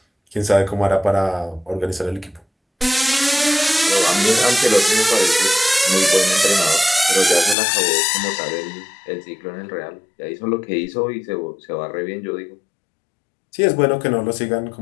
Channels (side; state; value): right; drops out; at 7.6 s